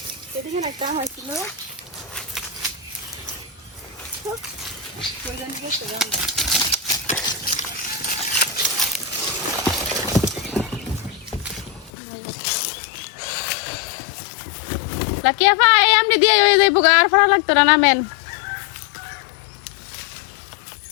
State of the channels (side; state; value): right; drops out; at 11.9 s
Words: এদিকে একটা হয়েছিল লাকিয়া ভাই এমনি দিয়ে হয়ে যাইব গা, আর ফরা লাগতো না নামেন।